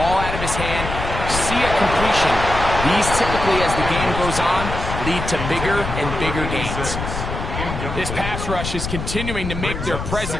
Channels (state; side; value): noise; left; rumble, 5 dB below the sound